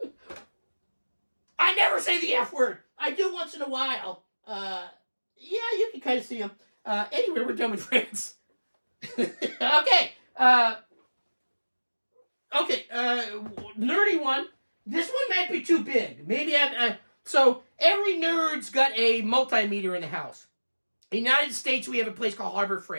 I never say the F word. I do once in a while. Yeah, you can kind of see him. Anyway, we're done with France. Okay. Nerdy one. This one might be too big. Maybe So every nerd's got a multimeter in the house. In the United States, we have a place called Harbor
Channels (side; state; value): both; inverted; correlation -1.00